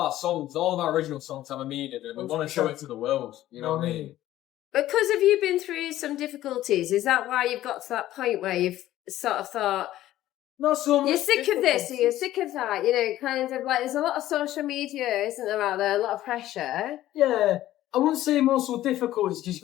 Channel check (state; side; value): quieter; right; 14.1 dB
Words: songs, all of our original songs have a meaning, and we want to show it to the world. You know what I mean? Because have you been through some difficulties? Is that why you've got to that point where you've sort of thought, Not so much. you're sick of this or you're sick of that? Kind of like there's a lot of social media, isn't there, out there? A lot of pressure. Yeah. I wouldn't say muscle difficulties because you've